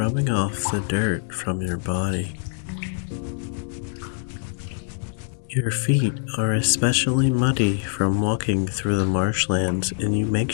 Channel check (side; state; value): right; silent; digital silence